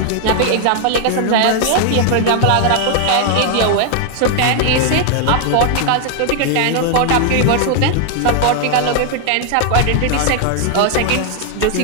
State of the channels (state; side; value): different; both; correlation 0.00